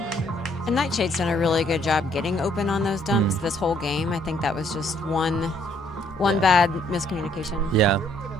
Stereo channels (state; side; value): normal; both; correlation 0.66